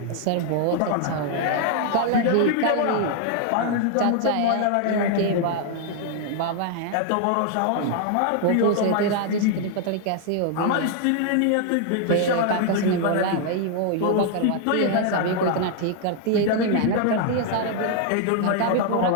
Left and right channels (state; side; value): different; both; correlation 0.00